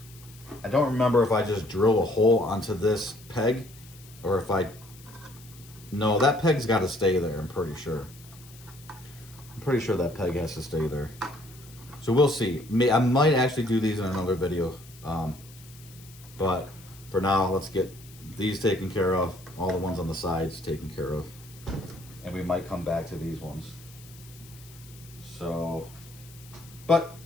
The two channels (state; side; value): noise; left; hiss, 22 dB below the sound